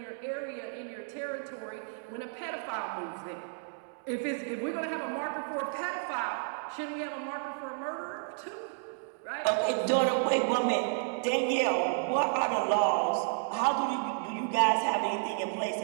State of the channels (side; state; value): left; silent; digital silence